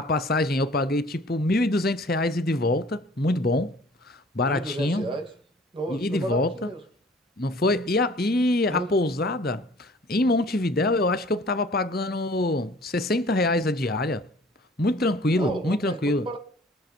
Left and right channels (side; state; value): both; normal; correlation 0.51